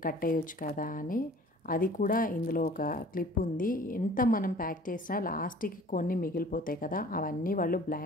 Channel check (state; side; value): normal; both; correlation 0.48